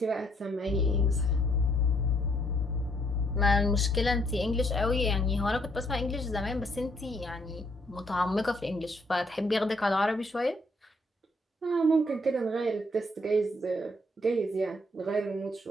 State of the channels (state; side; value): normal; both; correlation 0.69